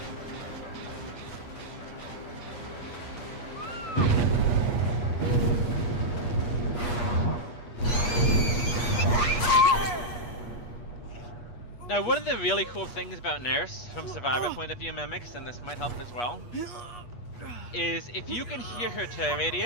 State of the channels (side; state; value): right; late; 8.4 ms